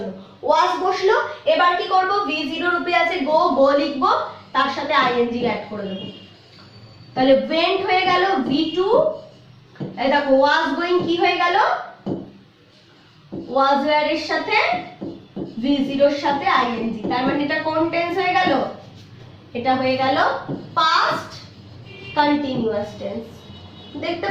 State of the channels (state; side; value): identical; both; correlation 1.00